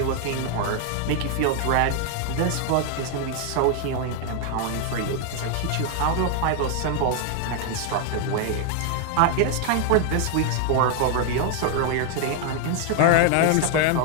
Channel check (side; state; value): both; different; correlation 0.00